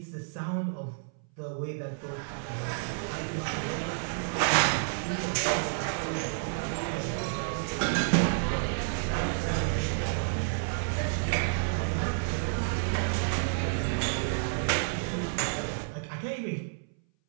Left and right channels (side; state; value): left; silent; 58 dB below the other